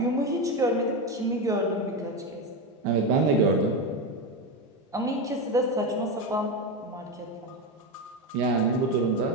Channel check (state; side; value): normal; both; correlation 0.14